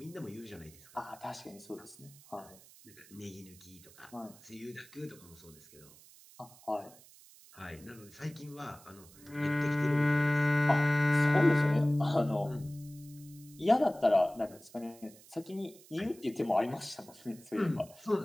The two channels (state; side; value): noise; right; hiss, 23 dB below the sound